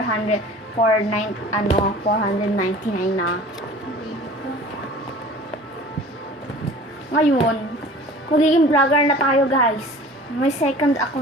na. Ngayon, magiging vlogger na tayo, guys. May second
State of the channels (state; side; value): normal; both; correlation 0.44